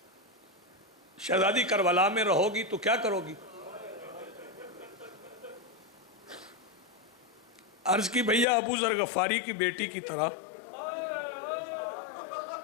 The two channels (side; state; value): right; drops out; at 8.5 s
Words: شہزادی کربلا میں رہو گی تو کیا کرو گی؟ عرض کی بھیا ابو ذر غفاری کی بیٹی کی طرح